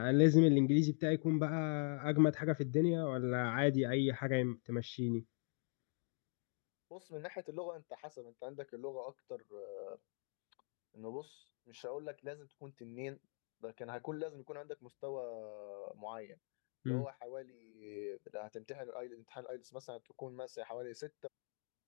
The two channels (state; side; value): silent; right; 50 dB below the other